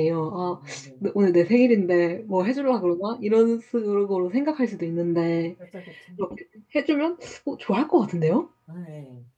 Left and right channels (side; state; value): both; identical; correlation 1.00